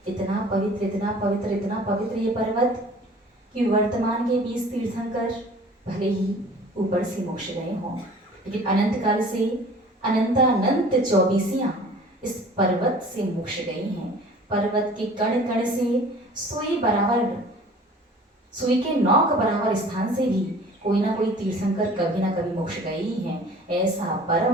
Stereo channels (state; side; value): normal; both; correlation 0.47